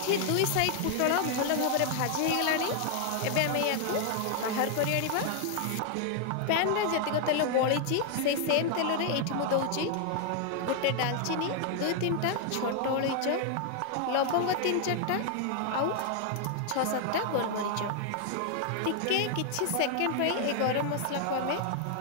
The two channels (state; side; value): different; both; correlation 0.00